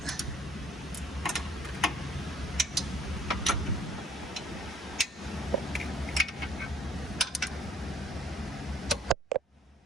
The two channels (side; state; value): both; normal; correlation 0.60